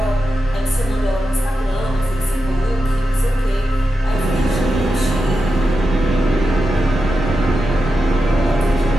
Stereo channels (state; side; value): normal; both; correlation 0.90